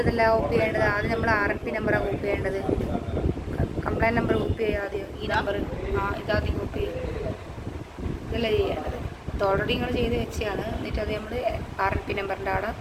അതല്ല കോപ്പി ചെയ്യേണ്ടത്, ആദ്യം നമ്മൾ RNP നമ്പറാണ് കോപ്പി ചെയ്യേണ്ടത്. കംപ്ലൈൻറ്റ് നമ്പർ കോപ്പി ചെയ്യുക ആദ്യം, ഈ നമ്പർ ഇതാദ്യം കോപ്പി ചെയ്യും, ഇതല്ല ചെയ്യേണ്ടത്. ഇത് ഓൾറെഡി നിങ്ങൾ ചെയ്ത് വെച്ചാണ്. എന്നിട്ട് അത് നമ്മൾ RNP നമ്പറിൻ്റെ അവിടെ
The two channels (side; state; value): both; identical; correlation 1.00